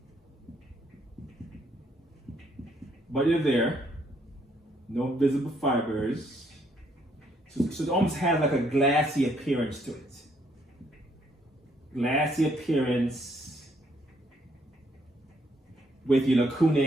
but they're there. No visible fibers. So it almost has like a glassy appearance to it. Glassy appearance with your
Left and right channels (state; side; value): normal; both; correlation 0.69